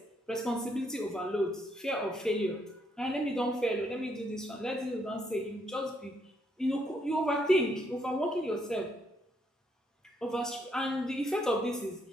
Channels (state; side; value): normal; both; correlation 0.74